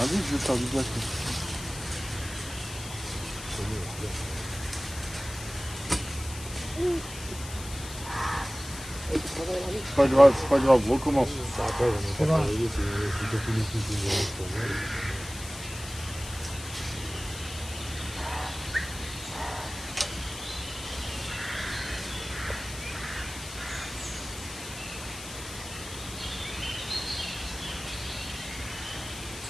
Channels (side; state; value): left; noise; hiss, 12 dB below the sound